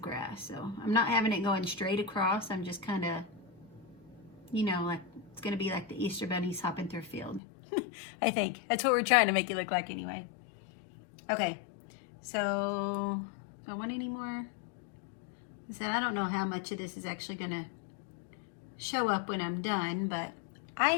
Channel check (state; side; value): drops out; right; at 7.4 s